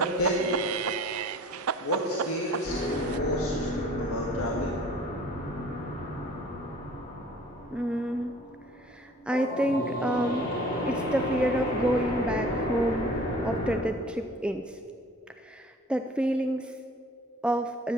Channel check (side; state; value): both; normal; correlation 0.48